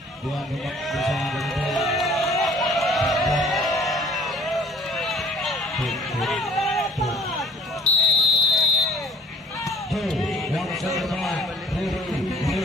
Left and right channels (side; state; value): both; normal; correlation 0.54